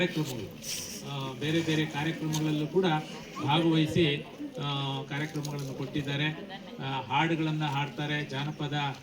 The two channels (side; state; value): both; identical; correlation 1.00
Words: ಬೇರೆ ಬೇರೆ ಕಾರ್ಯಕ್ರಮಗಳಲ್ಲೂ ಕೂಡ ಭಾಗವಹಿಸಿ ಕಾರ್ಯಕ್ರಮಗಳನ್ನು ಕೊಟ್ಟಿದ್ದಾರೆ. ಹಾಡುಗಳನ್ನು ಹಾಡ್ತಾರೆ, ಜಾನಪದ